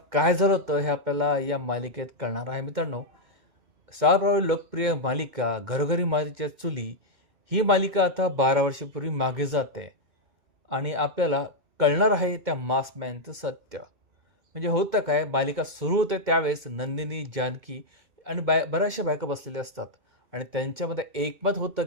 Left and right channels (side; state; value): left; late; 2.2 ms